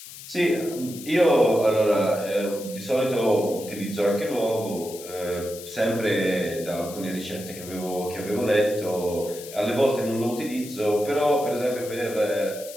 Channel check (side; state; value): left; noise; hiss, 14 dB below the sound